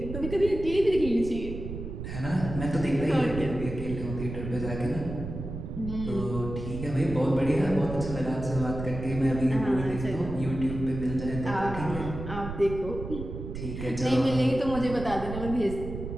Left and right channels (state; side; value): noise; right; rumble, 8 dB below the sound